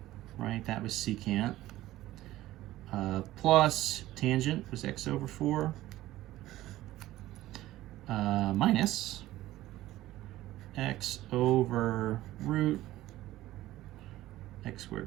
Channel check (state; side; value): quieter; left; 15.7 dB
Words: right? That was secant. Plus tangent was x over 4. Minus x over root x squared